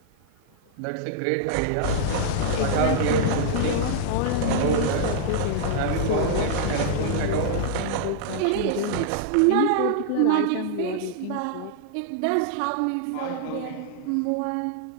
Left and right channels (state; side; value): different; both; correlation -0.01